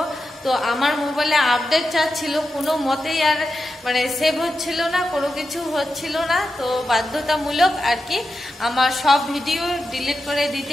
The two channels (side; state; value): both; normal; correlation 0.89